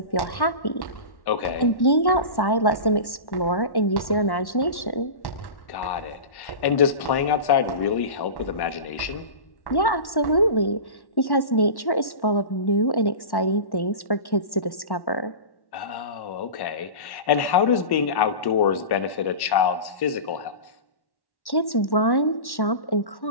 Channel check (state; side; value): late; right; 1.1 ms